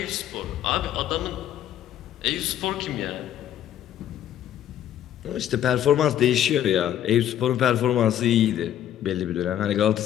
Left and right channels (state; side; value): quieter; right; 11.1 dB